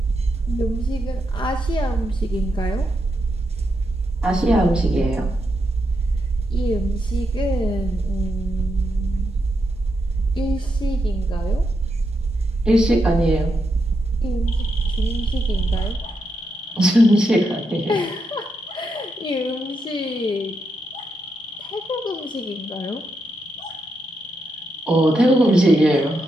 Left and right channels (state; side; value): normal; both; correlation 0.83